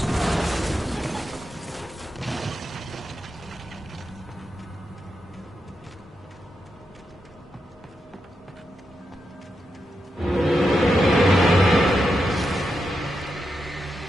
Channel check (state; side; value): normal; both; correlation 0.86